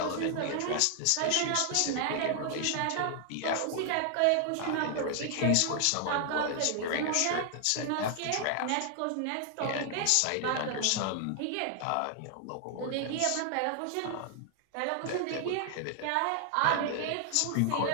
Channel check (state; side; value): different; both; correlation 0.00